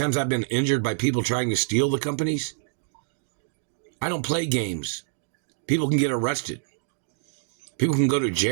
I've been injured by people trying to steal the companies? I don't play games. People can get arrested. People can go to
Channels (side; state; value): left; silent; digital silence